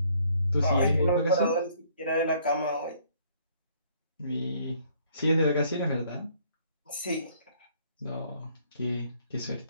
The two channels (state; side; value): inverted; both; correlation -0.63